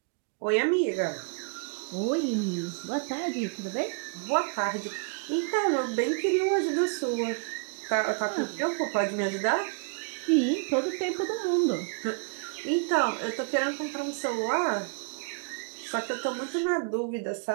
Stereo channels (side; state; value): left; quieter; 37.8 dB